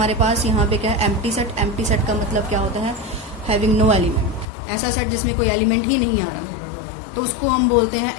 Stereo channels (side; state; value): right; drops out; at 4.5 s